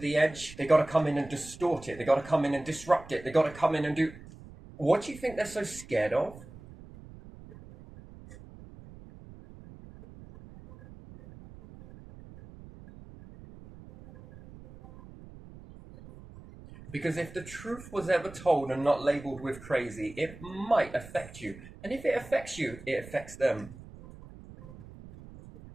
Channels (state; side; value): noise; right; rumble, 17 dB below the sound